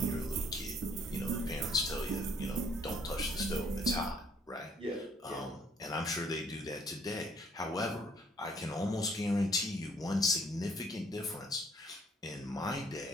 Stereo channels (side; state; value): both; normal; correlation 0.63